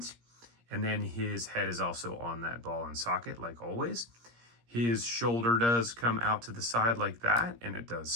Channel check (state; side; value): late; left; 17 ms